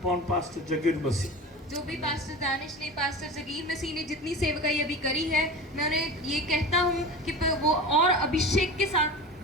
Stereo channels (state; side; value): normal; both; correlation 0.32